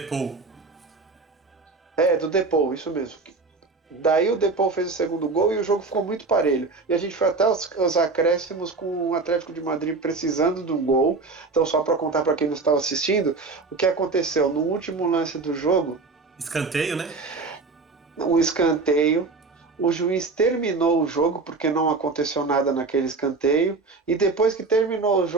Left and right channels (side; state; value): left; quieter; 4.0 dB